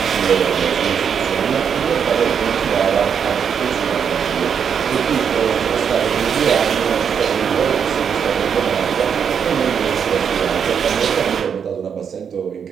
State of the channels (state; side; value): quieter; left; 7.3 dB